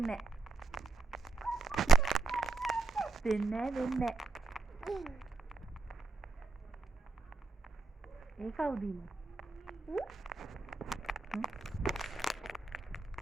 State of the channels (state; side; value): quieter; left; 4.1 dB